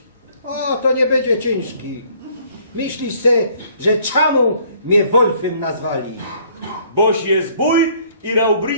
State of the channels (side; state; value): both; inverted; correlation -0.60